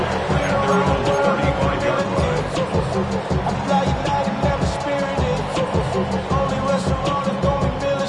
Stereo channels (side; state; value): both; identical; correlation 1.00